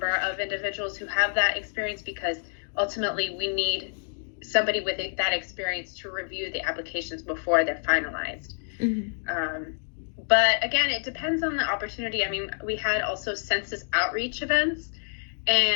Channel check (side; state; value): right; silent; digital silence